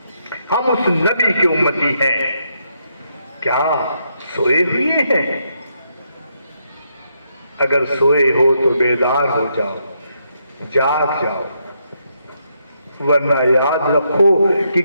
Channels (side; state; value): both; inverted; correlation -0.78